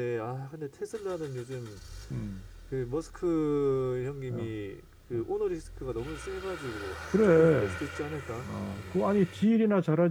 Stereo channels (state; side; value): identical; both; correlation 1.00